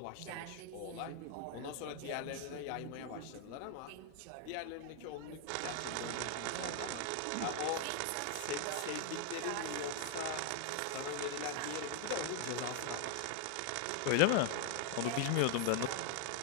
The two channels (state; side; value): different; both; correlation 0.00